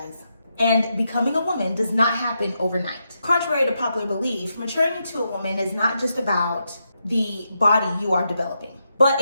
And becoming a woman does not happen overnight. Contrary to popular belief, maturing into a woman is not just about the body you are developing, but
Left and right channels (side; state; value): both; inverted; correlation -0.84